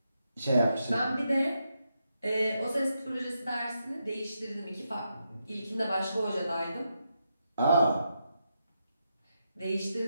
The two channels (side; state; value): both; inverted; correlation -0.83